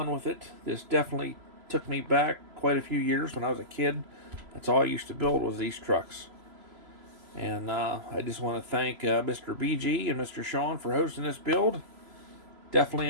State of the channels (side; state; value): left; late; 3.0 ms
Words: with it. This definitely took me back quite a few years when I was a kid. That's all I used to build was these trucks. And I just want to thank Mr. BG and Mr. Sean for hosting this build. Definitely